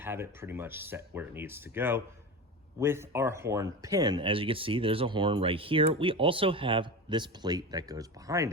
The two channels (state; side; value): normal; both; correlation 0.26